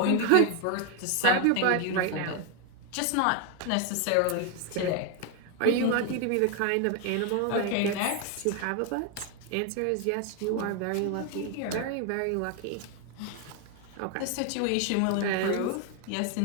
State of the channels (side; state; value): both; different; correlation 0.01